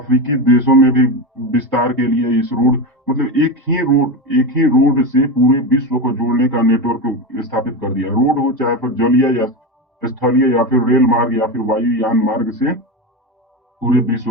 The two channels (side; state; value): both; normal; correlation 0.18